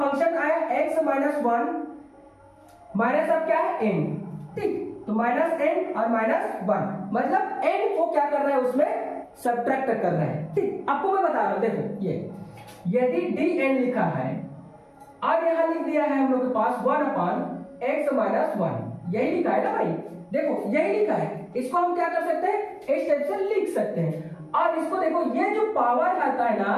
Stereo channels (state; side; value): identical; both; correlation 1.00